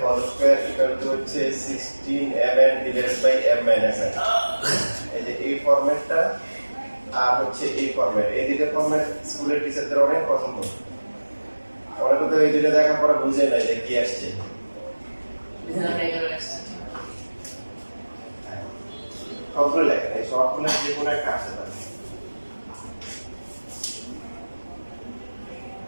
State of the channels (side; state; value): both; inverted; correlation -1.00